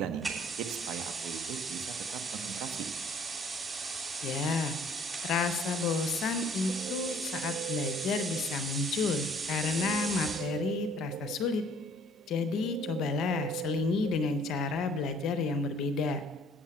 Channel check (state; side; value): normal; both; correlation 0.57